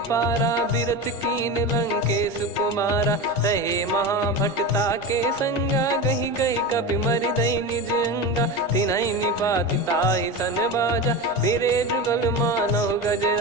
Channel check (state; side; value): normal; both; correlation 0.23